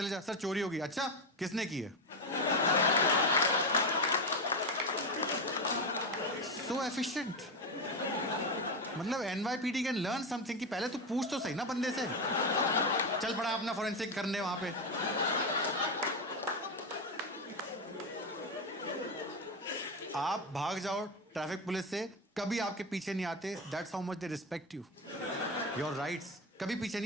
जा, सर चोरी होगी, अच्छा किसने की है? सो एफिशिएंट। मतलब NYPD कैन लर्न समथिंग कि पहले तू पूछ तो सही ना बंदे से। चल पड़ा अपना फोरेंसिक करने वहां पे। आप भाग जाओ ट्रैफिक पुलिस से, कभी आपके पीछे नहीं आते। That's how much they respect you, your rights. कभी पीछे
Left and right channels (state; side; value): normal; both; correlation 0.13